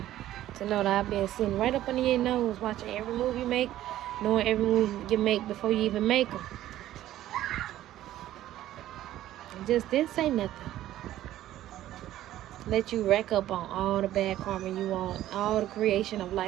to know that I've been sitting right up under your nose, watching every move you make, knowing every move you make before you even make them? Just didn't say nothing. Let you rack up on all the bad karma you want, all the creation of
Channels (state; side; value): quieter; left; 13.6 dB